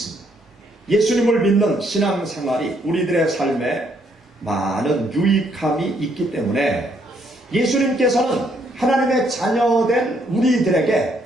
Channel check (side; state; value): both; normal; correlation 0.70